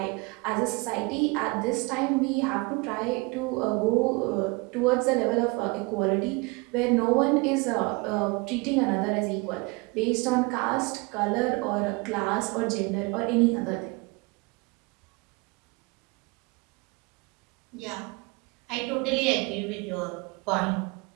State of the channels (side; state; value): left; quieter; 27.4 dB